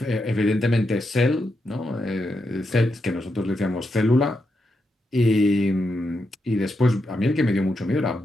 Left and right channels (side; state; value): both; normal; correlation 0.84